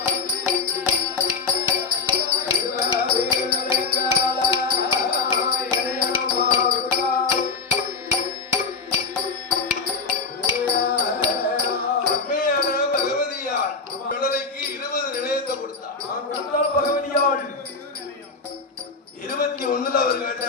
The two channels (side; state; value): right; quieter; 4.4 dB